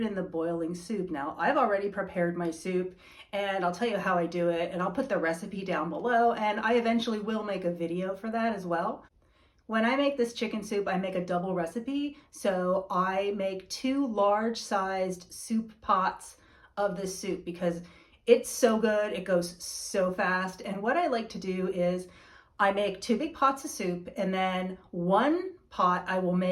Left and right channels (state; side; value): identical; both; correlation 1.00